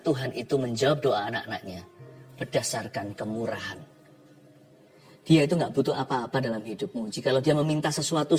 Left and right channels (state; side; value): identical; both; correlation 1.00